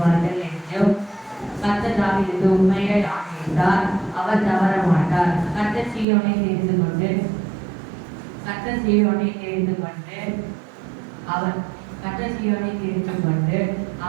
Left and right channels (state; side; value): drops out; left; at 6.1 s